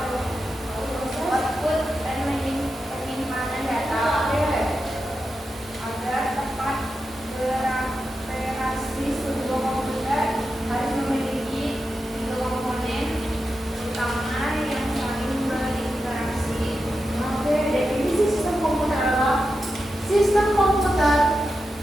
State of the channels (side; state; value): both; normal; correlation 0.89